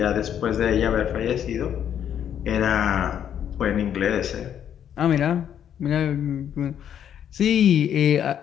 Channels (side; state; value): right; quieter; 9.4 dB